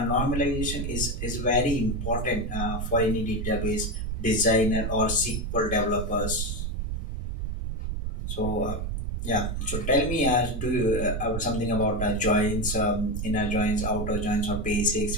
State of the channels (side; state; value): right; noise; rumble, 3 dB below the sound